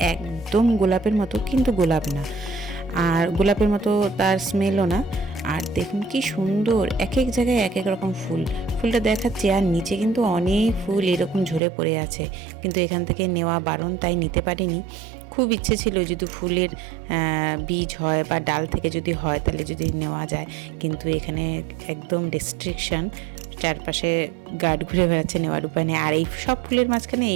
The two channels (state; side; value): drops out; left; at 11.6 s